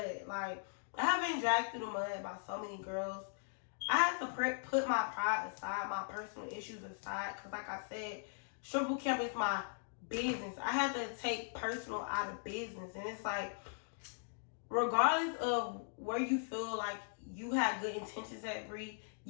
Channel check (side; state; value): right; silent; digital silence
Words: Like, I have been dragged through the mud by so many girls. I had to put my pride aside, my personal issues aside, because like I said, strip boot camp is my business. I had to take personal out of business. And it's like, regardless of where you feel like you had good intentions at, Bree,